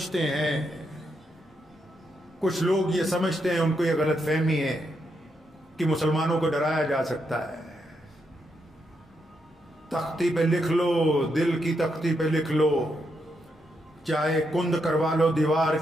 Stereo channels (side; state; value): both; normal; correlation 0.81